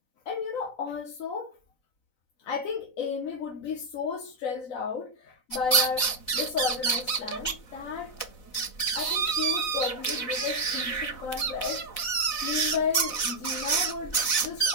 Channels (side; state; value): right; late; 4.0 ms